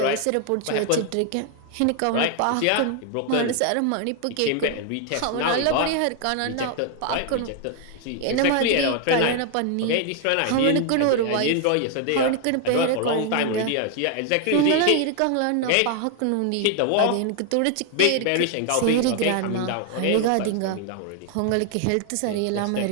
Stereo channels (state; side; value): different; both; correlation 0.00